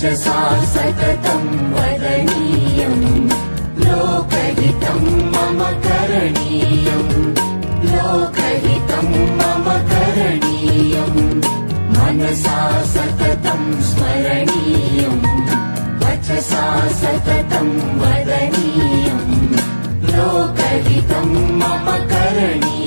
सततं वदनीयं लोकहितं मम करणीयं लोकहितं मम करणीयं मनसा सततं स्मरणीयं वचसा सततं वदनीयं लोकहितं मम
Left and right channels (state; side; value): inverted; both; correlation -1.00